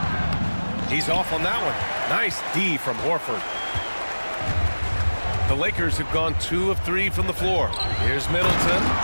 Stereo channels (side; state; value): both; inverted; correlation -1.00